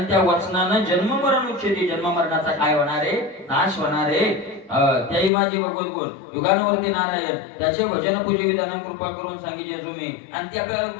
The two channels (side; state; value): right; drops out; at 5.3 s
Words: त्या वचनानं जन्म मरण उच्छेदी जन्म मरणाचा काय होणार आहे नाश होणार आहे त्याही माझे भगवत गुण युगानुवर्ती नारायण त्याचे भजन पूजे विधान कृपा करून सांगितले तुम्ही आणि त्या